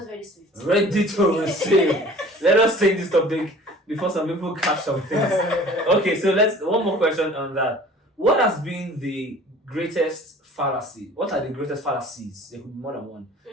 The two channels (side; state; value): both; normal; correlation 0.47